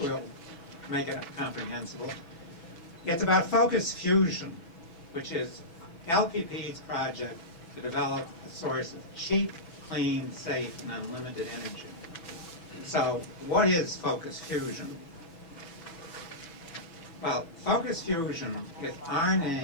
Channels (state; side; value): late; right; 6.0 ms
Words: we'll make it comprehensible. It's about focus fusion, which is LPP's project to develop a source of cheap, clean, safe, and unlimited energy. So what is focus fusion? Well, focus fusion is our